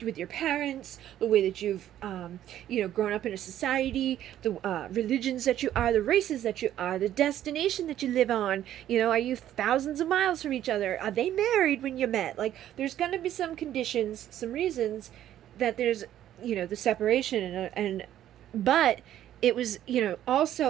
with your parents, the way that you've, grown up in a society, the religions that you are, the races that you are, the destination that you live on. Are you thousands of miles from each other? Are they married when you met? Like, there's going to be some conditions, some reasons that there's, the separation but it was,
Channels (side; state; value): left; quieter; 11.9 dB